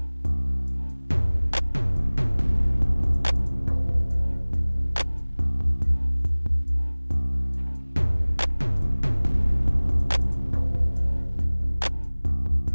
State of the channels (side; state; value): both; inverted; correlation -1.00